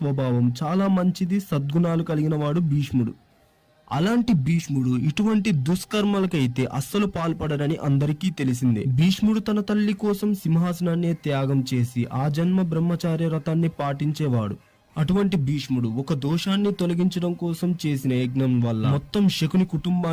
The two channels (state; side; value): identical; both; correlation 1.00